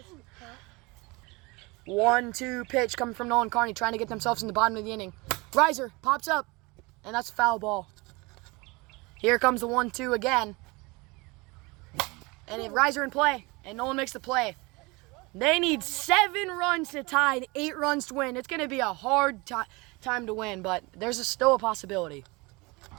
1-2 pitch coming from Nolan Carney, trying to get themselves in the bottom of the inning. Riser pops up, and that's a foul ball. Here comes the 1-2 again. And a riser in play, and Nolan makes the play. They need 7 runs to tie and 8 runs to win. It's going to be a hard time to win, but there's still a possibility.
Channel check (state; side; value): quieter; left; 25.4 dB